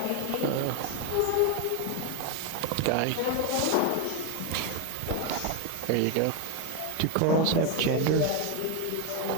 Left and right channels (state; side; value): different; both; correlation 0.01